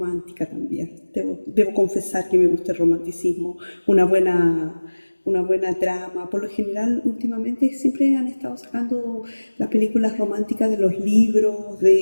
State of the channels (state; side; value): inverted; both; correlation -1.00